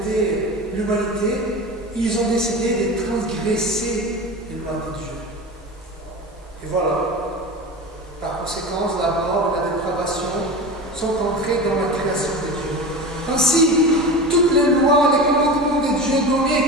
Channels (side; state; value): both; normal; correlation 0.29